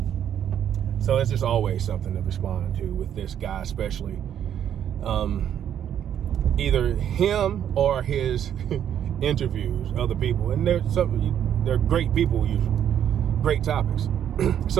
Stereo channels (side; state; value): left; quieter; 9.7 dB